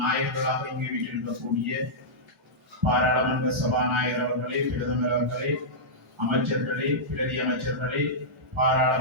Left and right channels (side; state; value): both; normal; correlation -0.12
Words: நாயகர்களாக இங்கு வீட்டிருக்கக்கூடிய பாராளுமன்ற சபாநாயகர் அவர்களே, பிரதமர் அவர்களே, அமைச்சர்களே, பிரதி அமைச்சர்களே,